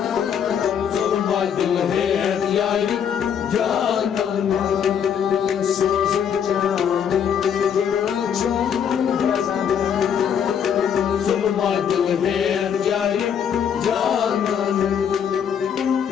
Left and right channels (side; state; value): right; quieter; 8.0 dB